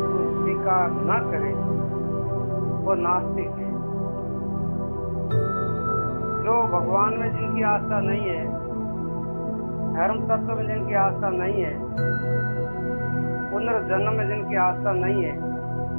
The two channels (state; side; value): inverted; both; correlation -1.00